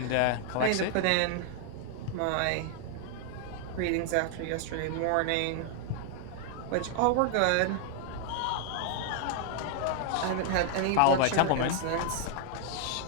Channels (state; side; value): different; both; correlation 0.00